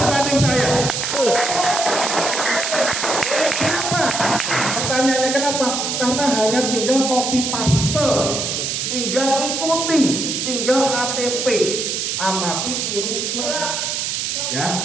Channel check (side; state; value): right; noise; hiss, 1 dB below the sound